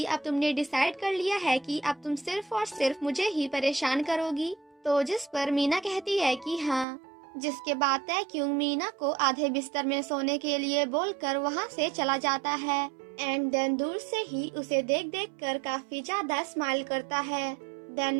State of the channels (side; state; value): left; drops out; at 6.9 s